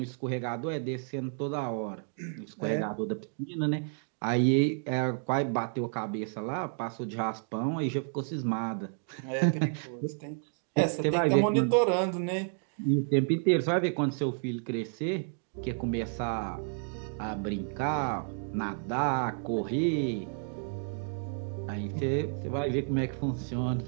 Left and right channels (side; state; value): left; silent; 57 dB below the other